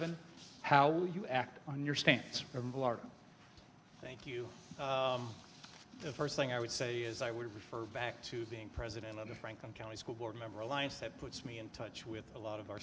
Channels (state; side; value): identical; both; correlation 1.00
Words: How will you act on your stance? Reverend Velardo. Thank you. The first thing I would say is I would refer back to being president of the Franklin County School Board Member Alliance. That puts me in touch with a lot of our